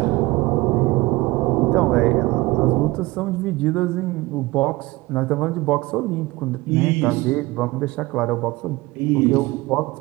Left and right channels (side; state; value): left; quieter; 21.1 dB